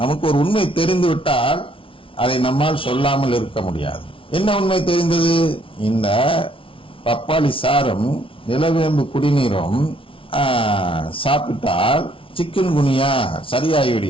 நமக்கு ஒரு உண்மை தெரிந்து விட்டால் அதை நம்மால் சொல்லாமல் இருக்க முடியாது. என்ன உண்மை தெரிந்தது? இந்த பப்பாளி சாரும் நிலவேம்பு குடிநீரும் சாப்பிட்டால் சிக்கன் குனியா சரியாகி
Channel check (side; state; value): right; late; 0.25 ms